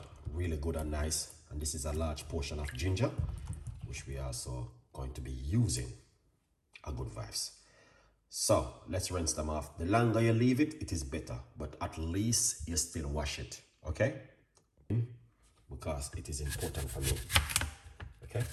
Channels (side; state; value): both; identical; correlation 1.00